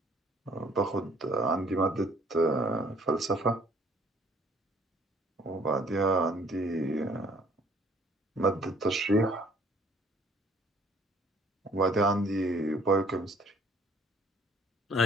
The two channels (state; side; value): normal; both; correlation 0.58